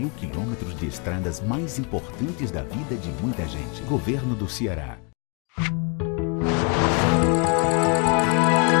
quilômetros de estradas mais importantes da vida de muita gente. Governo do Ceará.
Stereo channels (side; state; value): right; quieter; 35.0 dB